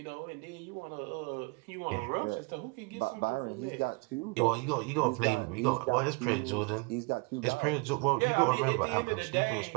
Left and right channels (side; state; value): left; quieter; 29.7 dB